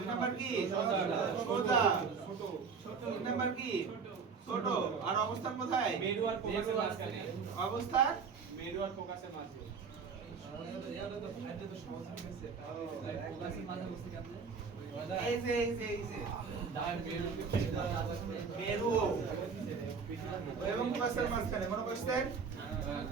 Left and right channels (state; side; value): quieter; left; 5.5 dB